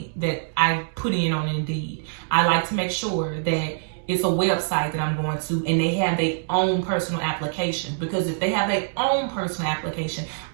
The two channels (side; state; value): left; silent; digital silence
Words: that I put in on Indeed. I like to make sure that it's a website that I'm going to and they have their own personal application. Because if they have their own personal application,